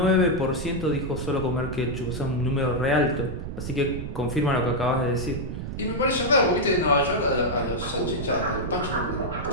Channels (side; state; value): right; noise; rumble, 7 dB below the sound